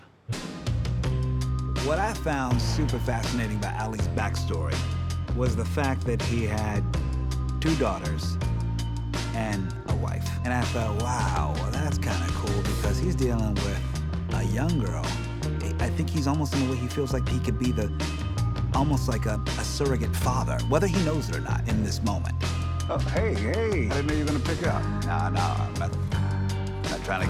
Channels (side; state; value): both; identical; correlation 1.00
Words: What I found super fascinating about Ali's backstory was the fact that he had 2 daughters and a wife. And I thought, wow, well, that's kind of cool, because he's dealing with a young girl. I think he's almost in a way he feels like he could be almost like a surrogate father, whether he knows it or not in this moment. Oh, hey, I didn't know you were gonna pick up. No, I'm not trying